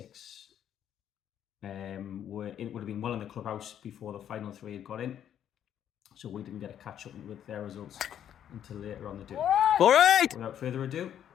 would have been well in the clubhouse before the final 3 had got in. So we didn't get a catch up with their results until later on the day. All right! Without further ado,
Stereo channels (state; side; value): quieter; right; 9.9 dB